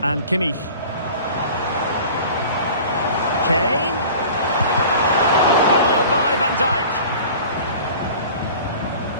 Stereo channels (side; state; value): both; inverted; correlation -0.42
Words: And Kimmich. Kane.